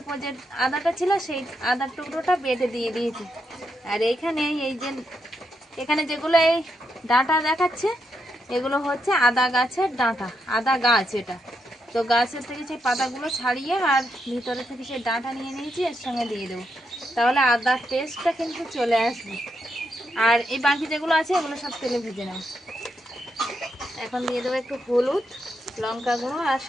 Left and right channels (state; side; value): normal; both; correlation 0.82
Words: যে আদাটা ছিল সেই আদার টুকরোটা বেটে দিয়ে দিয়েছি। আর এইখানে এই যে এখানে যেগুলো এই ডাঁটা দেখাচ্ছে, এগুলো হচ্ছে আদা গাছের ডাঁটা, আদা গাছ এটা। তো তো গাছের থেকে সেই পাতাগুলো ছাড়িয়ে আর ভিতরে থেকে সেই ডাঁটা নিয়ে নিয়েছি, এর সঙ্গে দিয়ে দেবো, তাহলে আদার টেস্টটা কিন্তু চলে আসবে। আর এই বাকি যেগুলো আছে এগুলো সব তেলে ভেজে নেব। এখন দিয়ে দেবো একটু হলুদ, লঙ্কা গুঁড়ো আর